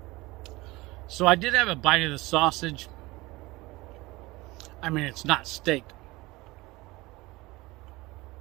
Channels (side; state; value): left; quieter; 21.2 dB